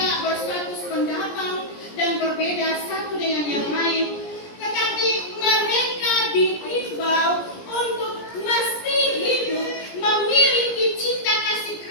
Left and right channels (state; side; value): late; right; 17 ms